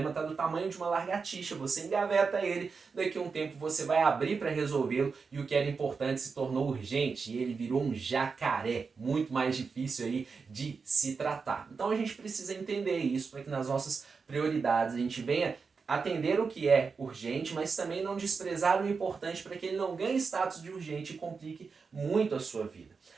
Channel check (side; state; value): left; quieter; 5.1 dB